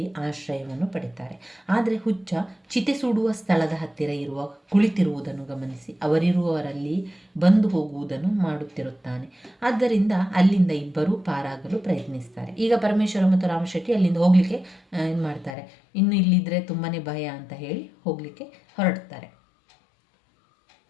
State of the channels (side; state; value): right; drops out; at 15.6 s